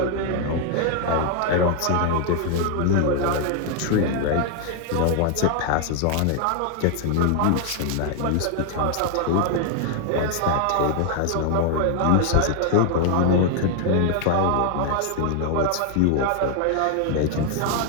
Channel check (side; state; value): both; different; correlation 0.00